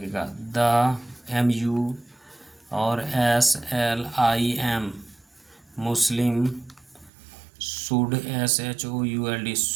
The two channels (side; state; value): left; drops out; at 7.1 s